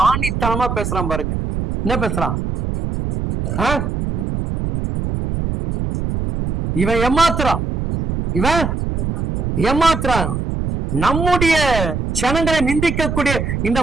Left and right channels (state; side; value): noise; right; rumble, 3 dB below the sound